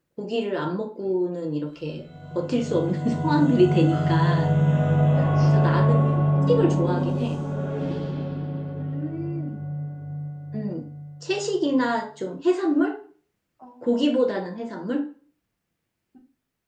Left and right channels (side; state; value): both; identical; correlation 1.00